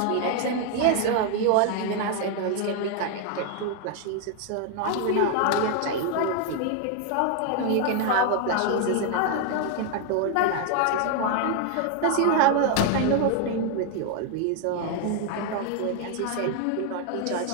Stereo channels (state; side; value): different; both; correlation 0.00